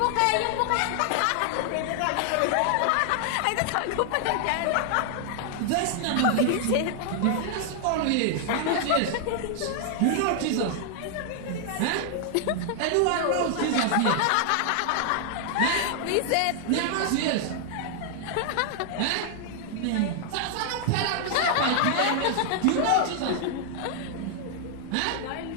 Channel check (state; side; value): different; both; correlation 0.00